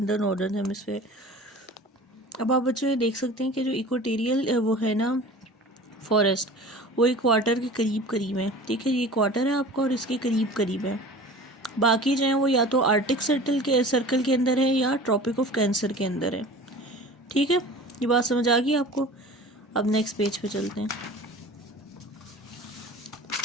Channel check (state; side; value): normal; both; correlation 0.40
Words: in the northern hemisphere. अब आप बच्चों ये देख सकते हैं कि जो equatorial वो है ना फॉरेस्ट, वो इक्वाटर के करीब करीब है, ठीक है। ये इक्वाटर है आपका और इसके करीब करीब है। बाकी जो है वो या तो आर्टिक सर्कल के अंदर है या ट्रॉपिक ऑफ कैंसर के अंदर है, ठीक है। ये बात समझ आ गई आपको? अब नेक्स्ट पेज पे चलते हैं।